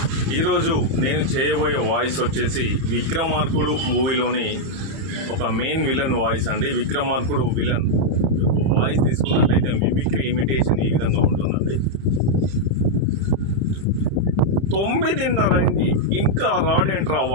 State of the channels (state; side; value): late; left; 30 ms